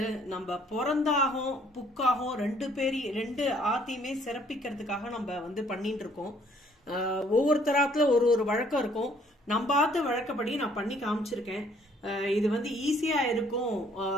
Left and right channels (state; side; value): normal; both; correlation 0.62